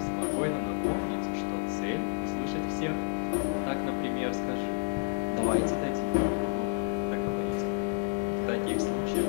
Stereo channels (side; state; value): right; silent; 58 dB below the other